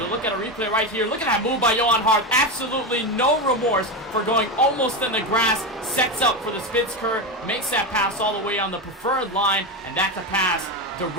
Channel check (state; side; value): normal; both; correlation 0.15